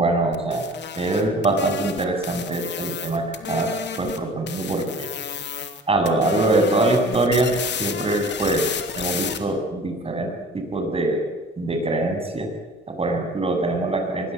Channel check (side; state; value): both; normal; correlation 0.44